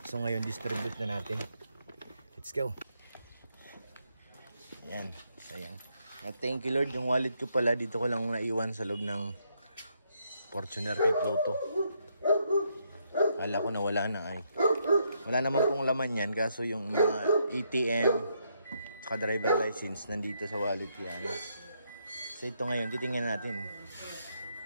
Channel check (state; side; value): inverted; both; correlation -0.76